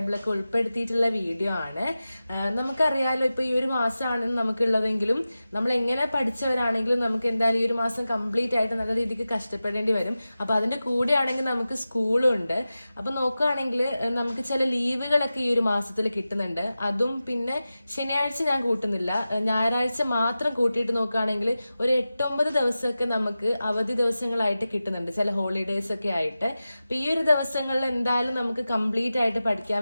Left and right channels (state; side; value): inverted; both; correlation -0.94